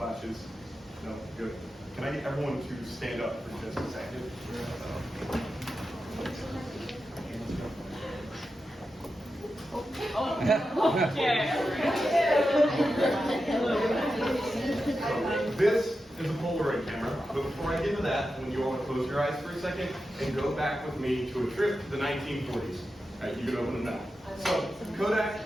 No, good. Can I get everyone to stand up for just a second? This is a Polaroid camera, but before I get into that, when you all close your eyes for a second and go back with me to a trip to the 1940s. All right, you can open them now. So,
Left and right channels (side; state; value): both; normal; correlation 0.90